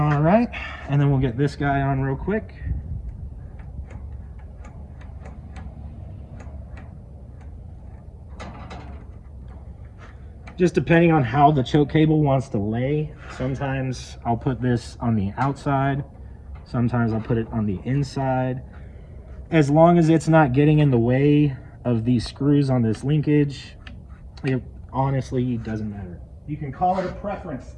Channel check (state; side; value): identical; both; correlation 1.00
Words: right, and then we'll get this guy on real quick. Just depending on how the choke cable wants to lay. Sometimes I'll put this on the outside. Sometimes I'll put it on the inside. As long as it's not getting in the way of these screws on this linkage, it honestly doesn't matter. You can call it a preference